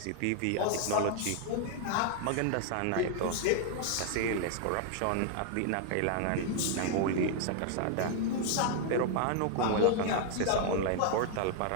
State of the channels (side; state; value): both; different; correlation 0.00